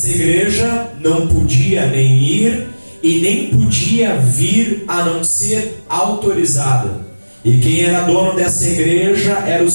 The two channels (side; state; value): both; inverted; correlation -1.00